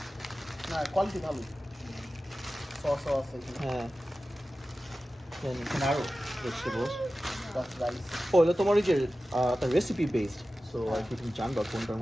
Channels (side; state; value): both; normal; correlation 0.95